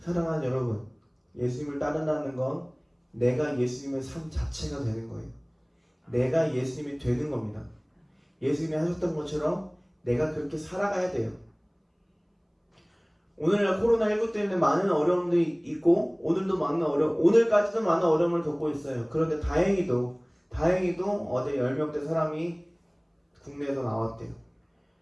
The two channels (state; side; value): identical; both; correlation 1.00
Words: 여러분, 예수님을 따른다는 건 내가 예수님의 삶 자체가 되는 거예요. 내가 예수님이 되는 겁니다. 예수님이 하셨던 것처럼 내가 그렇게 살아가야 돼요. 오늘날 코로나19 때문에 많은 어려움들이 있고 오늘까지도 많은 어려움을 겪고 있어요. 그런데 다행히도 어제 10명대 사람이 국내에서 나왔대요.